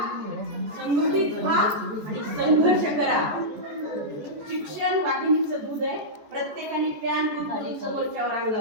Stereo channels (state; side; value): late; left; 14 ms